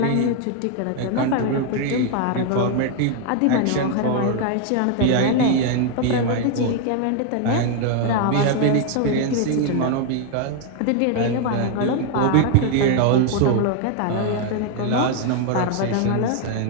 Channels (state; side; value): different; both; correlation 0.00